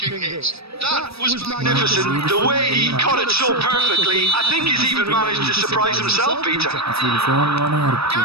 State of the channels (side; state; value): left; late; 0.78 ms